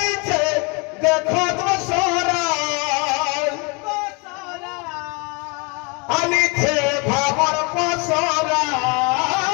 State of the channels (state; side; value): quieter; right; 30.9 dB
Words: দেখো দসরা আনিছে ভাবর পসরা